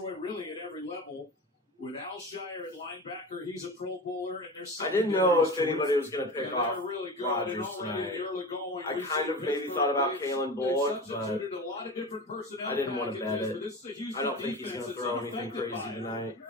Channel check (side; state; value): both; normal; correlation 0.30